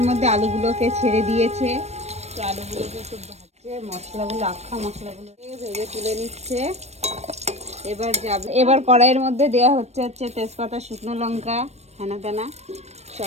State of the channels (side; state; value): left; late; 0.31 ms